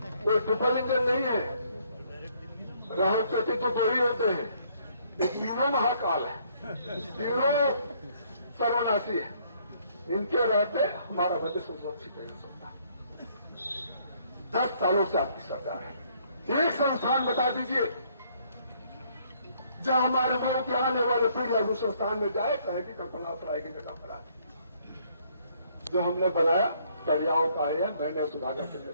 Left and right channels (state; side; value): inverted; both; correlation -0.66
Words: कोई ट्रिपल इंजन नहीं है, राहत प्रति तो 2 ही होते हैं। ये तीनों महाकाल है, तीनों सर्वनाशी है। इनके रहते हमारा भविष्य सुरक्षित नहीं हो सकता। 10 सालों से आपकी सरकार है। एक संस्थान बता दीजिए जहां हमारे गांव के आने वाले पीढ़ियां उस संस्थान में जाए, कहे कि कल्पना सराय की जगह पर आती। जो हमने बनाया कड़ियाओं का है, मैंने सुधाकर सिंह ने